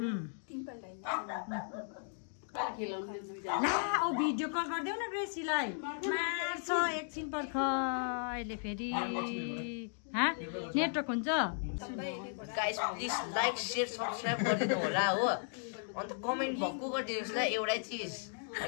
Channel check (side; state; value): right; silent; digital silence